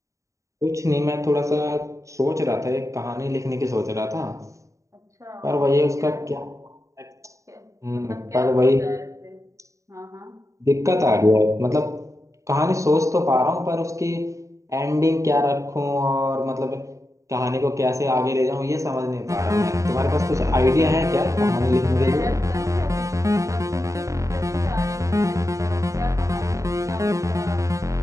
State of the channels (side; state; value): left; late; 0.15 ms